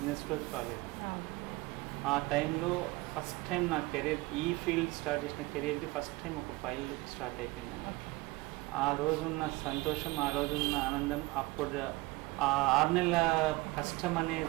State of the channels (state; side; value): quieter; left; 21.6 dB